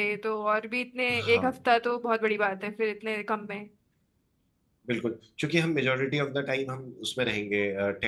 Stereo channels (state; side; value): identical; both; correlation 1.00